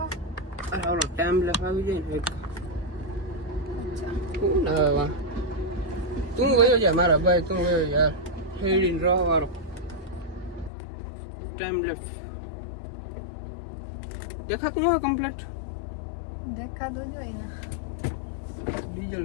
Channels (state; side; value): drops out; right; at 10.7 s